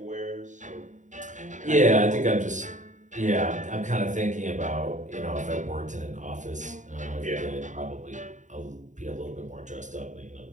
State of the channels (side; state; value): left; late; 0.36 ms